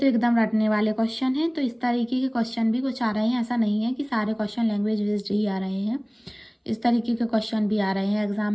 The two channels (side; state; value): both; identical; correlation 1.00